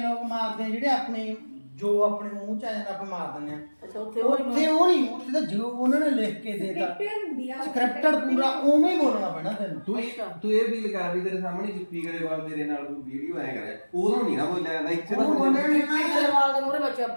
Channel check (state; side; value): inverted; both; correlation -1.00